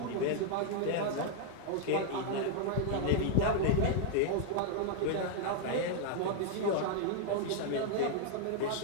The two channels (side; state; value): both; different; correlation 0.00